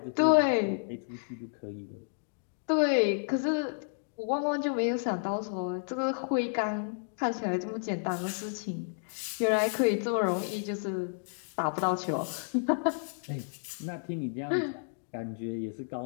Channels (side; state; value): right; silent; digital silence